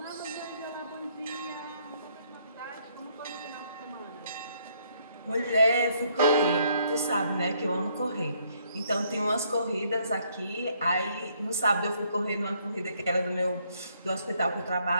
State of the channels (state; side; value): inverted; both; correlation -0.69